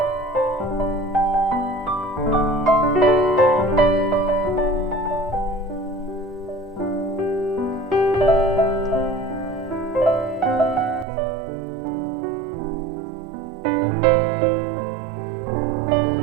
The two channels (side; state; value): left; drops out; at 11.1 s